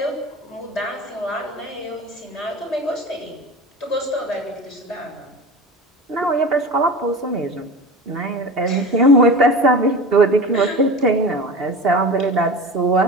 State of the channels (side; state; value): both; normal; correlation 0.32